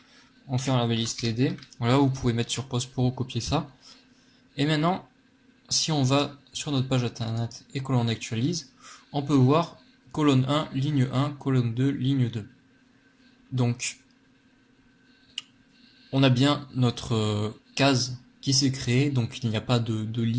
on fait la balise TD. Voilà, vous pouvez mettre sur pause pour recopier ça. Et maintenant, si on va sur notre page internet et que l'on actualise, on peut voir colonne 1, ligne 1, colonne 2, ligne 2. Donc, on a bien notre case qui s'est créée, donc il n'y a pas de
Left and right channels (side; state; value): both; identical; correlation 1.00